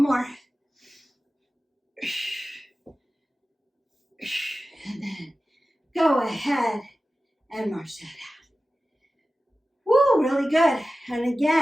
more. And then go ahead and march that out. Woo, really good. And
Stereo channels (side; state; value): both; normal; correlation 0.95